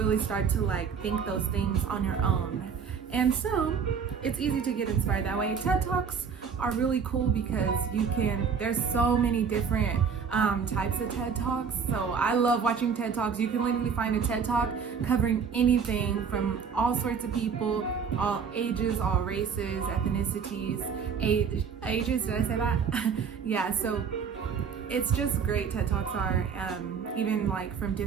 start to like think those things on your own. And so it's easy to get inspired that way. TED Talks are really cool because there's so many different types of TED Talks. So I love watching TED Talks. You can literally find a TED Talk covering anything from all sorts of people, all ages, all races, ethnicities, ages, did I say that? Yeah, so it's just great. TED Talks are even like from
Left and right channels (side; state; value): left; quieter; 6.4 dB